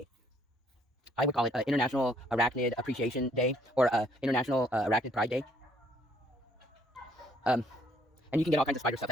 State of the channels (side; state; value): both; normal; correlation 0.65